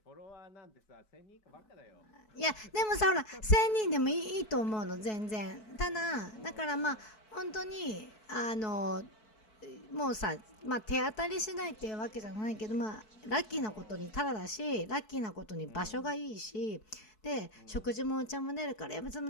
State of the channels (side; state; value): right; late; 4.6 ms